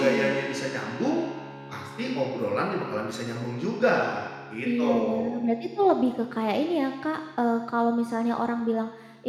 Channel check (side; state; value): both; identical; correlation 1.00